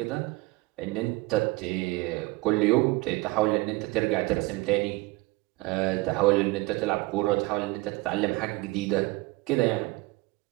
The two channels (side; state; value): left; quieter; 22.2 dB